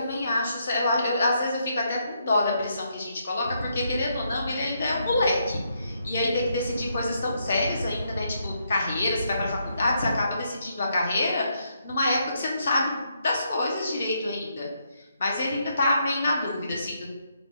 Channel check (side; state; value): both; inverted; correlation -0.77